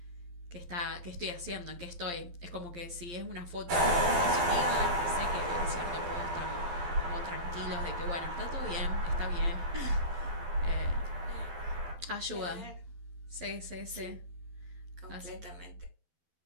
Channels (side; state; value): left; late; 12 ms